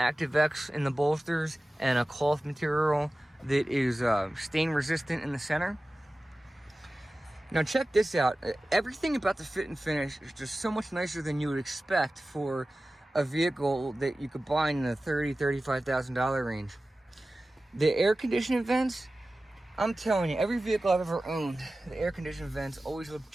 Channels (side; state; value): both; normal; correlation 0.96